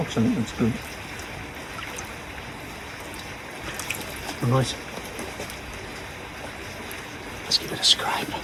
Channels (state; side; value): identical; both; correlation 1.00